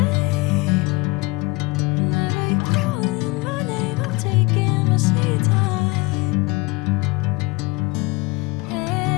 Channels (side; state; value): right; quieter; 24.4 dB